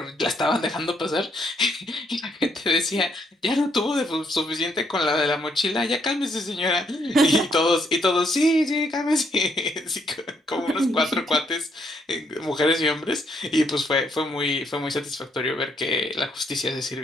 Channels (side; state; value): both; normal; correlation 0.73